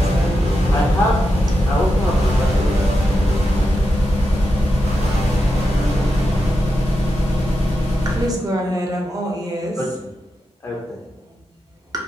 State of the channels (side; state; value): both; normal; correlation 0.88